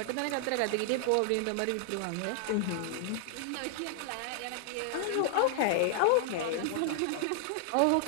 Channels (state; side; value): different; both; correlation -0.01